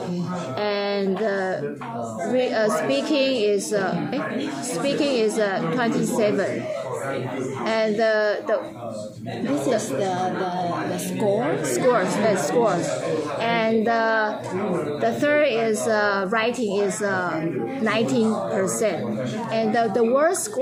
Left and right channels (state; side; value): identical; both; correlation 1.00